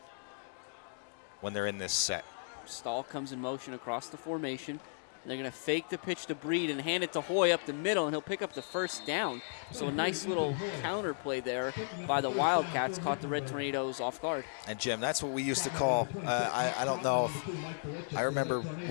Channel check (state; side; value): silent; right; digital silence